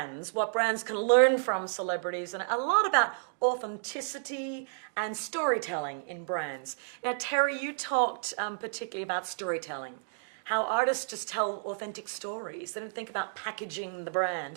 what brands can learn from celebrities, and a lot about authenticity and storytelling in brands. Now, Terry, you talked particularly about storytelling, how artists just tell authentic stories. They don't think about packaging the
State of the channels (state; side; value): silent; left; digital silence